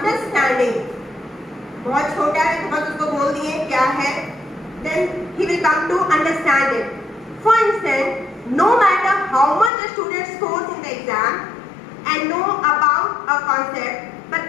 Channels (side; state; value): right; drops out; at 9.7 s